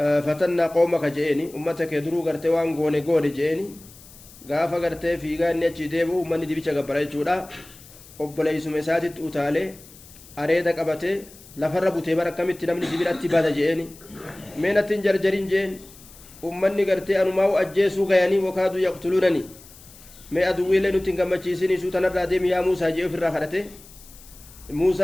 قومك جئني أمتك يدرو غرتي وان غوني جئني غافا غرتي في غاني أجي ديبو أمني دي بيشا غبراي جودا أبلي سمساتي تؤتالي أريدا قبتي لفر بوتي بركمت نمني جبراتي بادا جئني مينة جرجرين جئن أمني غرتي أنماو أجيسو غياني وكادو يقتلونني مي أدوي لنو تنغمچيسيني سوتنا راديم يا موسى جئ في الراخرته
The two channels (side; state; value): left; noise; hiss, 21 dB below the sound